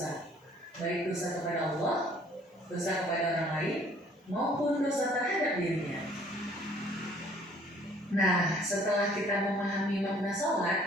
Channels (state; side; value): normal; both; correlation 0.57